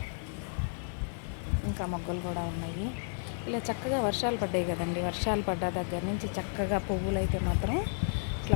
ఇంకా మొగ్గలు కూడా ఉన్నాయి. ఇలా చక్కగా వర్షాలు పడ్డాయి కదండి. వర్షాలు పడ్డ దగ్గర నుంచి చక్కగా పువ్వులు అయితే మాత్రం ఇట్లా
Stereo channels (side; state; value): right; silent; digital silence